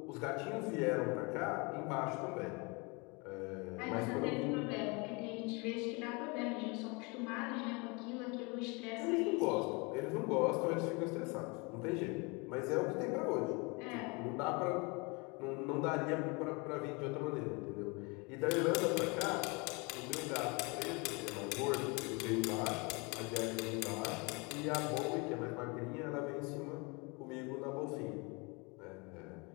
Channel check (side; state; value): right; quieter; 29.2 dB